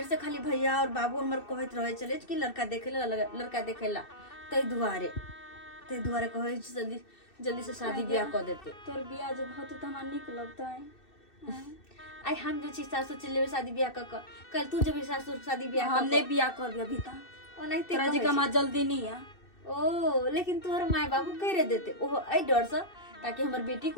से खाली भैया और बाबू हमर कहत रहे चले कि लड़का देखेला, लड़का देखेला, तै दुआरे कहै छै जल्दी जल्दी से शादी ब्याह कर देते। तोर बियाह जब भौ तो हमरा नीक लगतै। आई हम जे छी सासुर चले शादी ब्याह क कल तू जब सासुर शादी ब्याह हम नहीं बियाह करबे अभी ता। ओनाहिते तोरा जगह में जल्दी नहीं है। ओ लेकिन तोहर माय बाबू कह रहे देते ओहो आई डर से, ताकि हमर बेटी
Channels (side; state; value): right; late; 2.6 ms